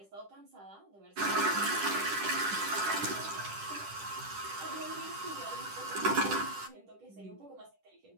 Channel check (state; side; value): late; left; 10 ms